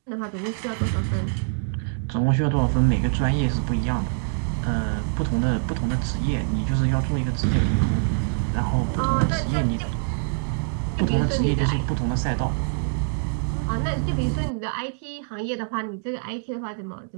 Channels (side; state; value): left; silent; digital silence